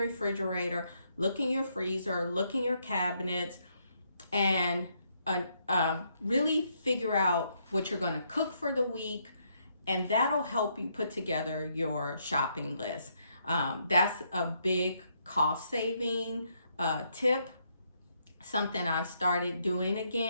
refrigerator, look in your freezer, look in your cabinets, and really figure out what you're going to cook for the week, and that'll help you put together your shopping list. That's a big cost saving tip, something I've started doing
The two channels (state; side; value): inverted; both; correlation -0.75